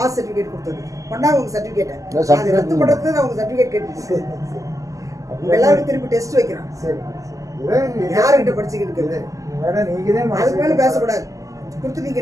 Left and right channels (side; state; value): left; late; 0.16 ms